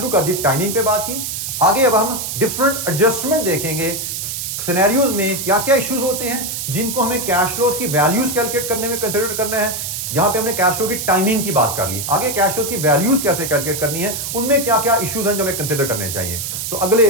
कर दी, टाइमिंग पे बात की, आगे अब हम डिफरेंट एडजस्टमेंट देखेंगे, सिनेरियोज में क्या क्या इश्यूज होते हैं जिनको हमें कैश फ्लोज की वैल्यूज कैलकुलेट करने में कंसीडर करना है। यहां पे हमने कैश फ्लो की टाइमिंग की बात कर ली, आगे कैश फ्लो की वैल्यूज कैसे कैलकुलेट करनी है, उनमें क्या क्या इश्यूज हैं जो हमें कंसीडर करने चाहिए। तो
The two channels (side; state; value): right; noise; hiss, 4 dB below the sound